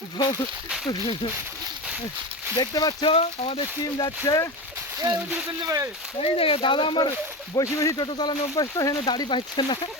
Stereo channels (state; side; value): normal; both; correlation 0.22